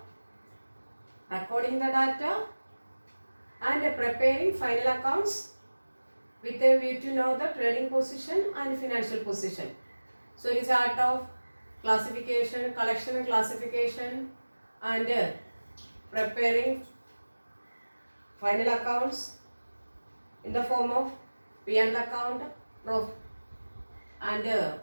recording the data and preparing final accounts with a view to know the trading position and financial position. So it is art of classification, collection and classification, and preparing final accounts in the form of P&L account, and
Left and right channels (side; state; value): both; inverted; correlation -1.00